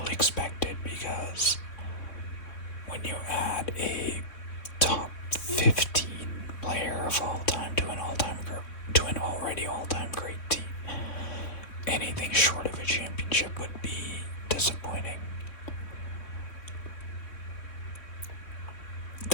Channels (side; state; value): right; late; 3.6 ms